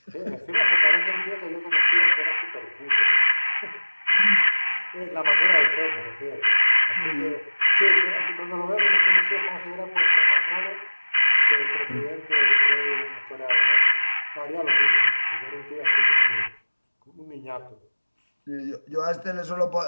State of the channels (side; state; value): both; inverted; correlation -1.00